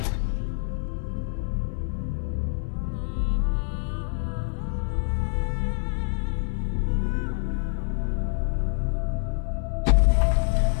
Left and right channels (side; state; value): right; silent; 61 dB below the other